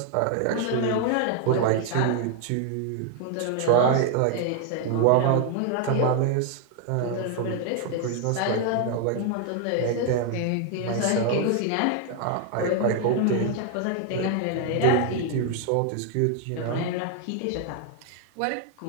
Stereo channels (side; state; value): both; different; correlation 0.00